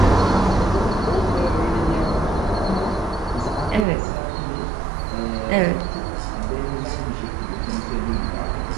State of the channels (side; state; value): left; drops out; at 3.9 s